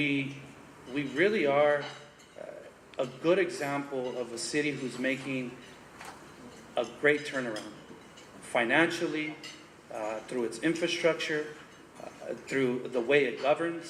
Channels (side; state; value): both; identical; correlation 1.00